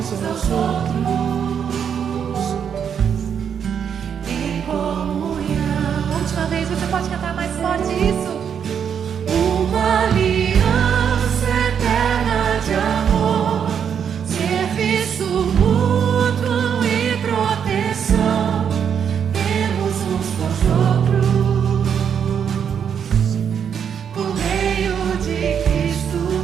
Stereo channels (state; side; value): quieter; left; 7.8 dB